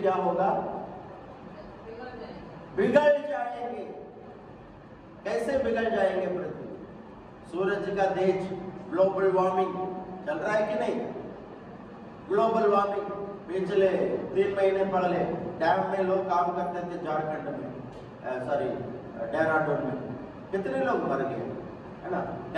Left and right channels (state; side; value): identical; both; correlation 1.00